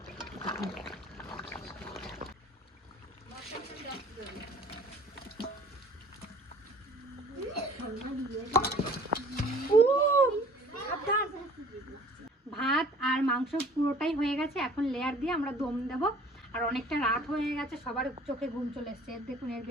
ভাত আর মাংস পুরোটাই হয়ে গেছে, এখন লেয়ার দিয়ে আমরা দম দেব। আর অনেকটা রাত হয়ে গেছে, সবার চোখে ঘুম চলে এসছে। দেখুন এর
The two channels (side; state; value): both; normal; correlation 0.50